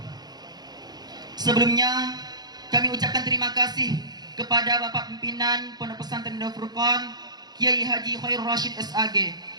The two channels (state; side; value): late; left; 0.20 ms